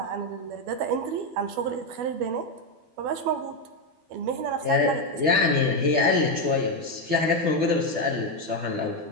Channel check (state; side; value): late; left; 12 ms